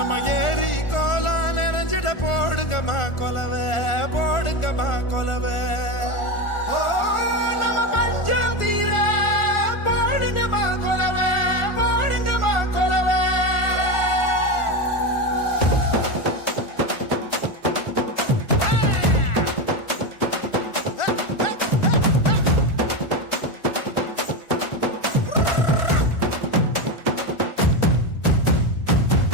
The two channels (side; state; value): right; late; 1.4 ms